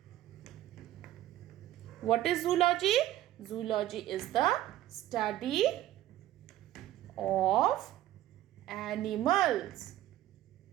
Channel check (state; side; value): quieter; left; 14.1 dB